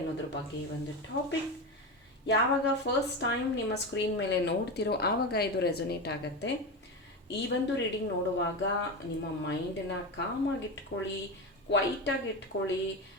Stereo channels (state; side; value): normal; both; correlation 0.19